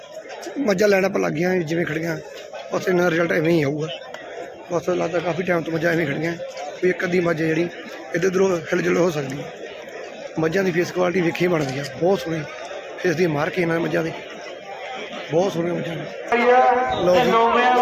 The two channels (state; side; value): identical; both; correlation 1.00